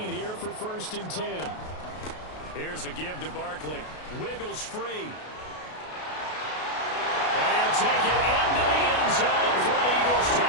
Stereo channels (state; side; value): late; right; 33 ms